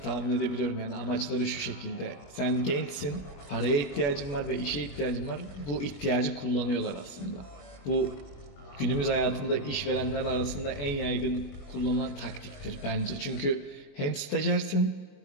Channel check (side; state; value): right; late; 21 ms